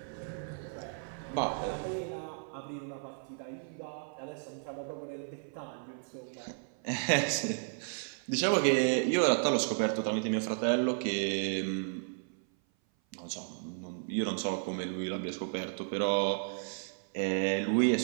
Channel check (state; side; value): silent; left; 55 dB below the other